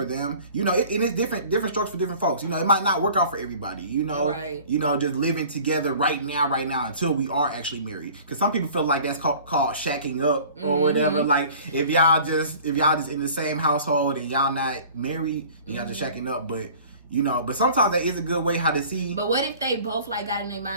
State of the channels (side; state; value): both; inverted; correlation -0.46